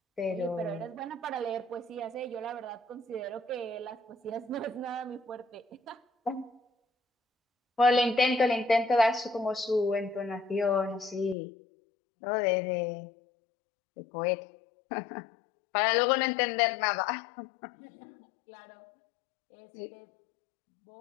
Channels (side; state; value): right; drops out; at 11.4 s